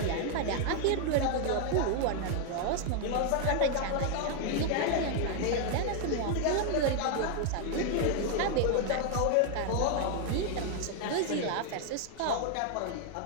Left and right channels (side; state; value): both; different; correlation 0.00